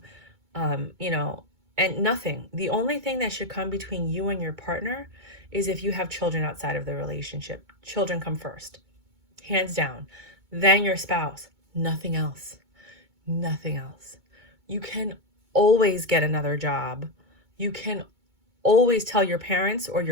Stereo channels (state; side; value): late; left; 2.2 ms